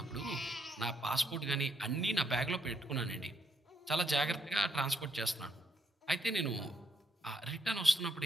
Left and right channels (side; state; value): both; normal; correlation 0.75